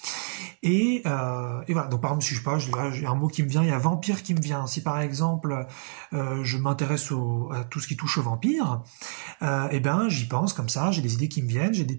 Et voilà, donc par exemple, si je sais pas, j'ai un mot qui me vient, il y a vampire qui me vient. Si par exemple, je m'intéresse à tout ce qui touche aux vampires, et ben j'y pense comme ça, j'ai des idées qui me viennent, j'ai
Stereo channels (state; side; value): silent; left; digital silence